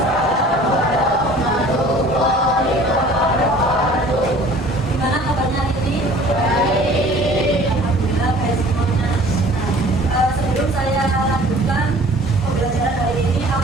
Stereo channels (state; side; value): normal; both; correlation 0.49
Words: Gimana kabarnya ini? Alhamdulillah baik semuanya. Sebelum saya lanjutkan pembelajaran hari ini,